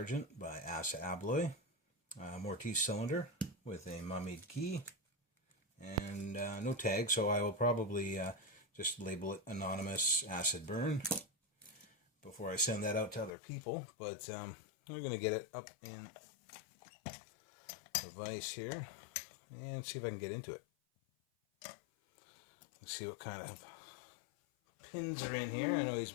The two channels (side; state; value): right; drops out; at 13.3 s